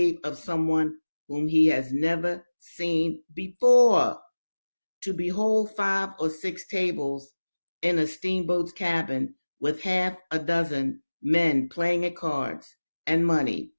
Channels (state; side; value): inverted; both; correlation -1.00